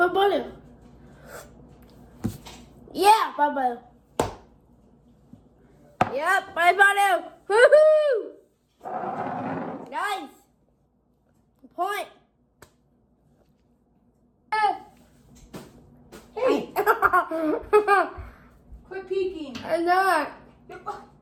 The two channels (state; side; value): identical; both; correlation 1.00